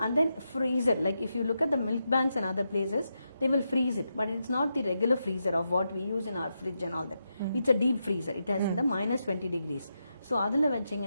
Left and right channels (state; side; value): inverted; both; correlation -0.85